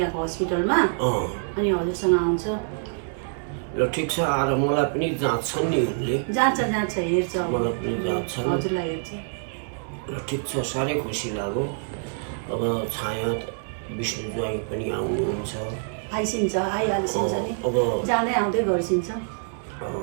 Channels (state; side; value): silent; left; digital silence